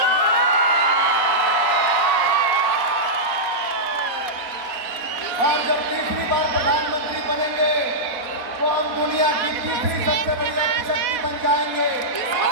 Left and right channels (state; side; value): late; left; 4.1 ms